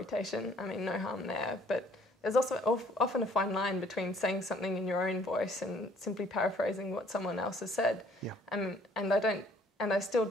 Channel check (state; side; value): normal; both; correlation 0.60